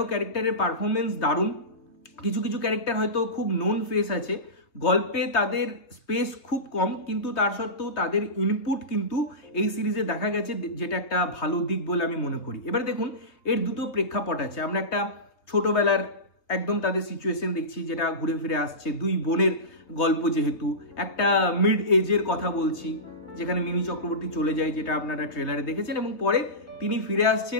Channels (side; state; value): right; late; 3.2 ms